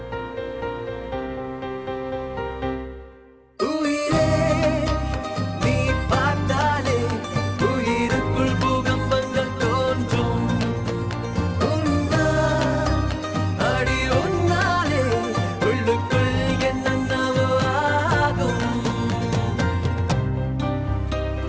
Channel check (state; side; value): identical; both; correlation 1.00